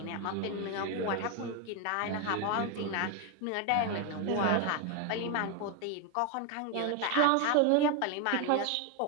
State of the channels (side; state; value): both; different; correlation 0.01